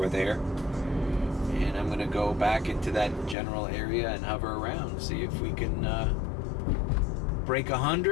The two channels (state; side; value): drops out; right; at 3.4 s